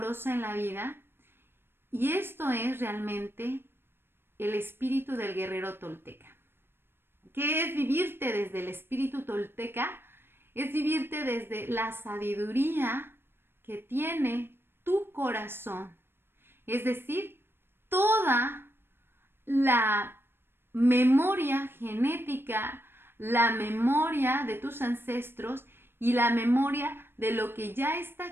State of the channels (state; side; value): late; left; 0.11 ms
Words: en la vida, y esto es realmente el espíritu del guerrero tolteca. ¿Qué es vivirte desde el espíritu tolteca? Es vivirte desde la sabiduría que tiene tu corazón, es decir, toda la memoria genética, la memoria de tus ancestros y la memoria de lo que ya está